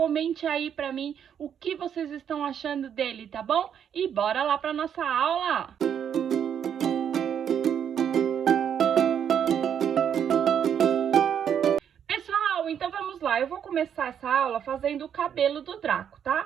aí pra mim o que vocês estão achando dele, tá bom? E bora lá pra nossa aula! Pessoal, então vamos lá. Eu vou começar essa aula fazendo o cabelo do Draco,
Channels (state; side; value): quieter; left; 8.5 dB